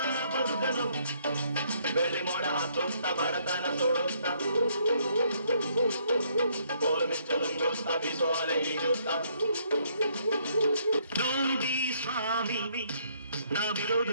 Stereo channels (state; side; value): inverted; both; correlation -0.68